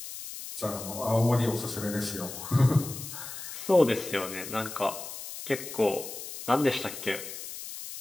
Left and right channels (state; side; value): noise; left; hiss, 10 dB below the sound